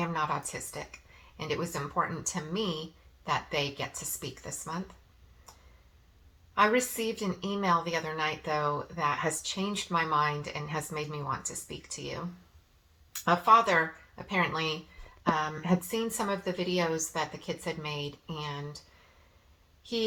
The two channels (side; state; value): both; identical; correlation 1.00